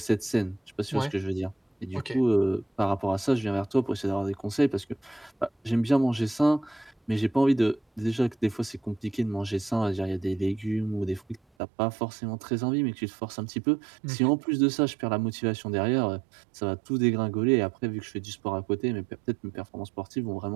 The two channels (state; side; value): drops out; left; at 11.4 s